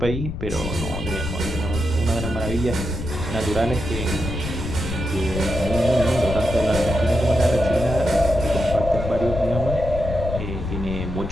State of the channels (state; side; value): noise; left; rumble, 6 dB below the sound